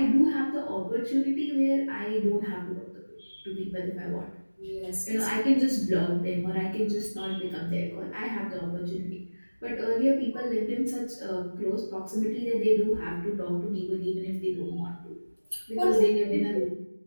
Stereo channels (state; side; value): inverted; both; correlation -1.00